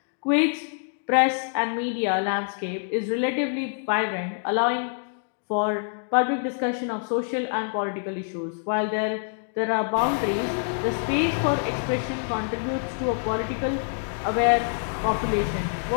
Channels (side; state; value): right; silent; digital silence